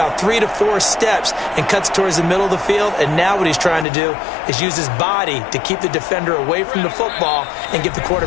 3 to 4 steps, and cuts towards the middle of the field. And now what he's trying to do is use his body to keep the defender away from the football and give the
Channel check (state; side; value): drops out; right; at 3.9 s